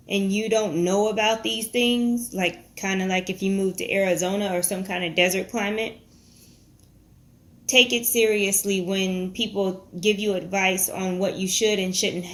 and you don't know about these things, like kind of like if you move to Arizona or some kind of desert climate, take it seriously when people give you advice on what you should and shouldn't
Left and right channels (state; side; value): identical; both; correlation 1.00